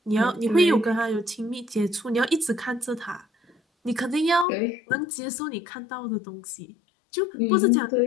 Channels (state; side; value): drops out; right; at 4.5 s